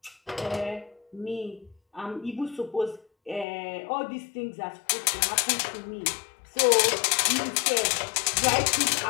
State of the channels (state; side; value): drops out; right; at 3.5 s